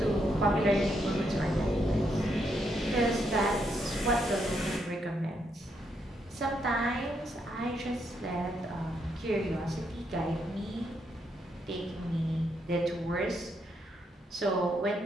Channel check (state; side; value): normal; both; correlation 0.78